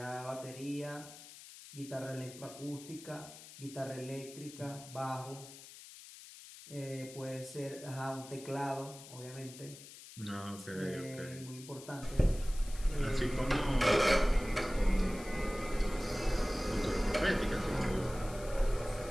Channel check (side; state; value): left; noise; hiss, 16 dB below the sound